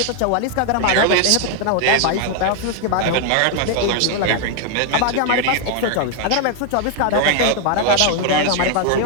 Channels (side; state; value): both; different; correlation 0.00